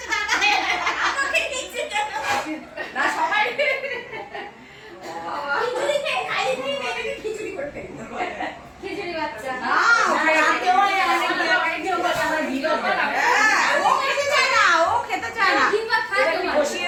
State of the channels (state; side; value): identical; both; correlation 1.00